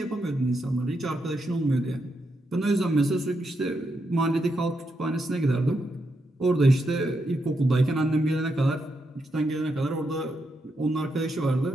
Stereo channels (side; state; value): both; normal; correlation 0.82